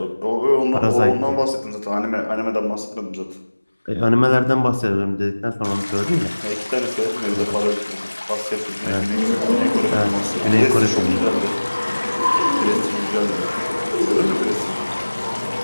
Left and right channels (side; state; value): both; inverted; correlation -1.00